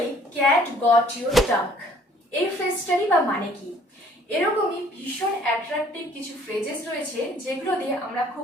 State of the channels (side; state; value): both; normal; correlation 0.58